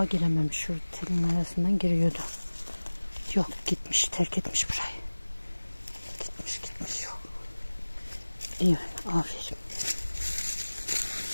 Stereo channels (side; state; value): both; inverted; correlation -1.00